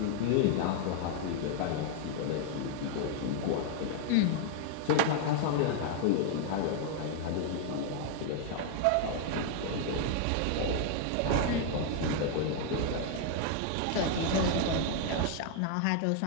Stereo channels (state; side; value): different; both; correlation 0.00